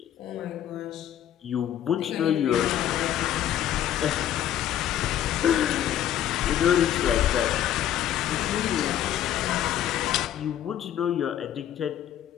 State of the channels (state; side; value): quieter; right; 11.1 dB